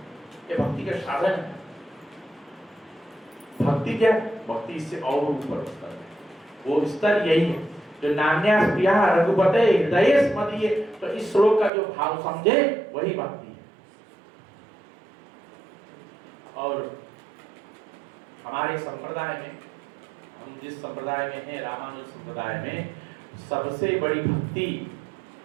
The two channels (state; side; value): drops out; left; at 11.7 s